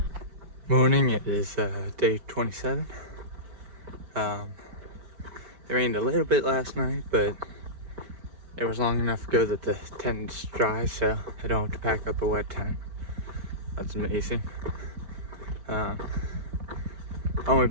Morning, it is day 27. It rained a little bit last night, but it was long enough ago that the tent's dry, so I don't have to pack up a wet tent. That's amazing. Only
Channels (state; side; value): late; left; 5.1 ms